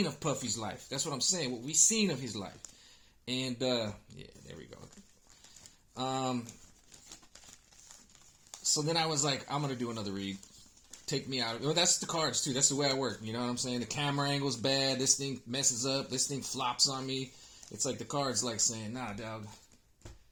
of Puffy's life. That's what I'm saying. What we seen of his life. And yeah, there we go. So then I was like, I'm gonna do another read. Take me out of it. Well, that's the cards too. That's the way I work. You know what I'm saying? The camera angle's bad. This thing messes up. This thing flops on me. It's like the cards like saying, nah, dog.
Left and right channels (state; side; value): identical; both; correlation 1.00